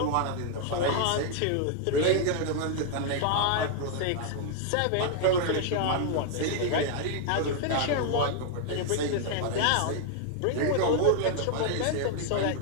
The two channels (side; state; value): both; different; correlation 0.00